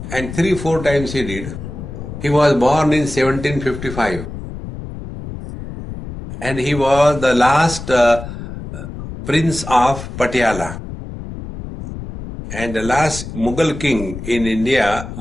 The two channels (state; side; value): noise; left; rumble, 10 dB below the sound